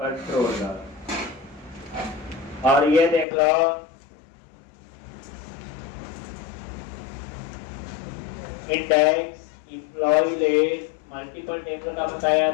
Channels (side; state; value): right; drops out; at 3.2 s